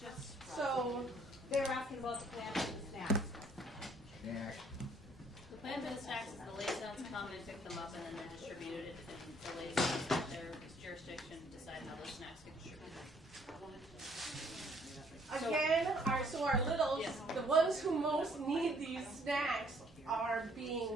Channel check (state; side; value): normal; both; correlation 0.63